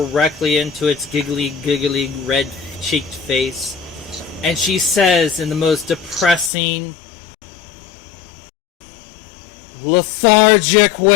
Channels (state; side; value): drops out; right; at 6.5 s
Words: into its giggly, red-cheeked face, and she says in the most depressing, lethargic